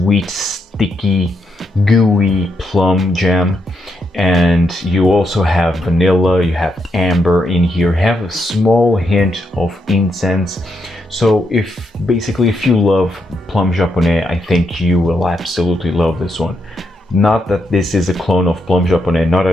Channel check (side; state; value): both; normal; correlation 0.80